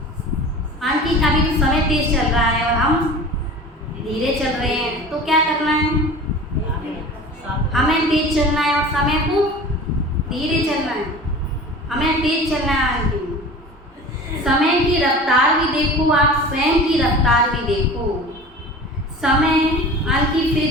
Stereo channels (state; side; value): normal; both; correlation 0.38